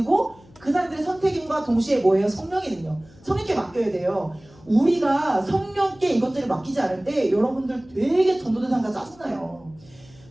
그 사람들의 선택임과 동시에 뭐예요? 성령의 능력. 성령께 맡겨야 돼요. 우리가 성령께 이것들을 맡기지 않을 때 여러분들 되게 전도대상자 짜증나요.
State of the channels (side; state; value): left; noise; hum, 26 dB below the sound